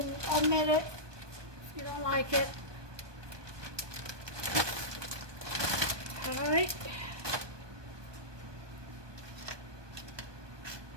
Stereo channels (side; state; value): left; late; 1.2 ms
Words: omit it if you don't like it. Alright.